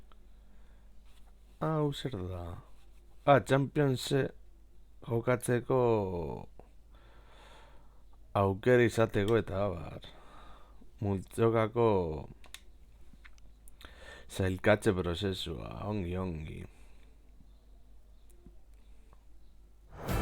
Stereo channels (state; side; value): identical; both; correlation 1.00